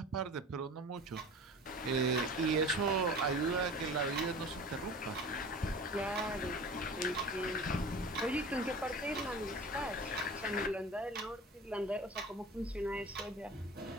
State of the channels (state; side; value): normal; both; correlation 0.38